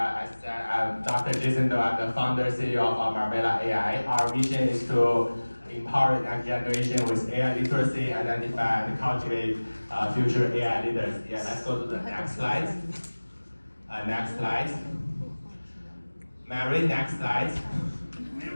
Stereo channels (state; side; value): inverted; both; correlation -1.00